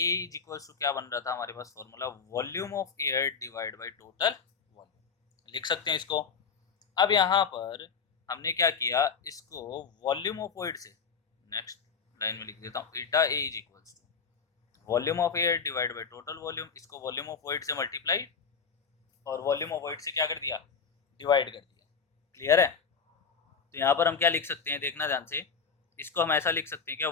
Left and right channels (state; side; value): quieter; right; 5.8 dB